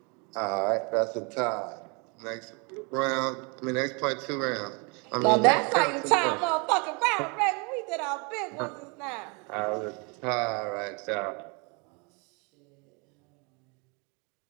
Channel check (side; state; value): left; quieter; 31.9 dB